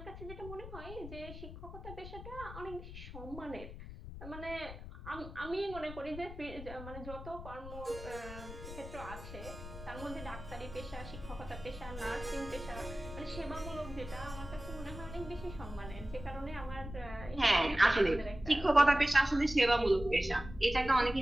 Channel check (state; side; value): noise; left; rumble, 11 dB below the sound